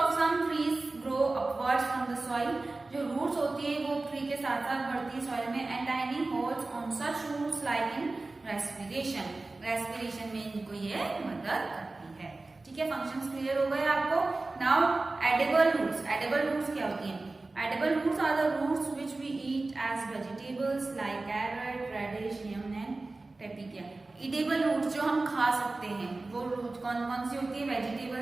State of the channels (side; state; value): left; quieter; 3.2 dB